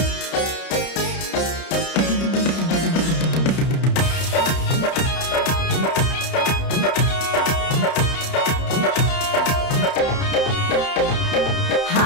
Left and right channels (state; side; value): late; right; 31 ms